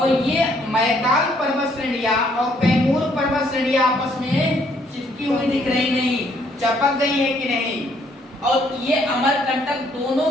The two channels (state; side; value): normal; both; correlation 0.67